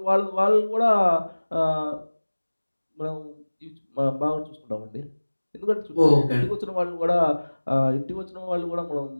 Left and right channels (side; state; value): both; inverted; correlation -1.00